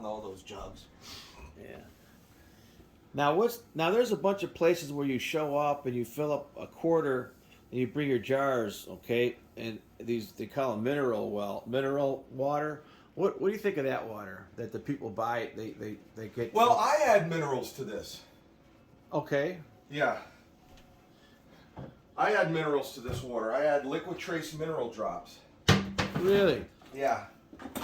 all those jugs. Yeah. Now there's a bunch of places where you show up and you fill up a quarter and you bring your jars, okay? And they call them mineral water. What do you think of that water that the people buy? They get. Well, I add minerals to this. Okay. Yeah. I add minerals to this water. I add liquid trace mineral drops. Really? Yeah.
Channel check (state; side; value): identical; both; correlation 1.00